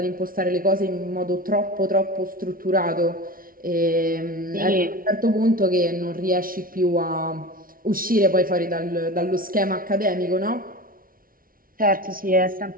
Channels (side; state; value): left; late; 0.42 ms